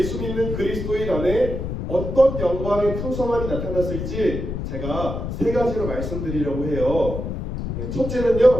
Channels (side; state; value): left; noise; rumble, 5 dB below the sound